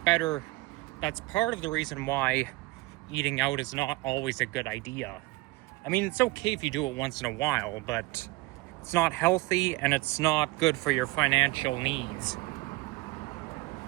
That's part of the reason why eating out is not always a good idea. I mean, it's okay if you do it once in a while, but it's not healthy and it's not good for your financial needs.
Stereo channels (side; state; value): left; quieter; 21.0 dB